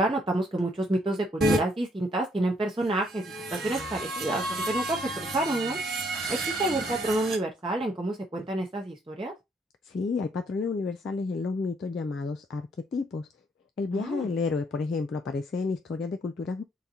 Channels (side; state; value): both; normal; correlation 0.69